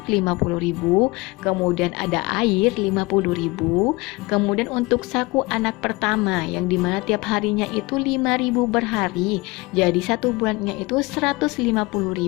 50.000, kemudian ada air 50.000, kemudian untuk saku anak pertama yang dimana tiap harinya itu 5.000 per hari, jadi satu bulannya itu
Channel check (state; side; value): quieter; right; 23.7 dB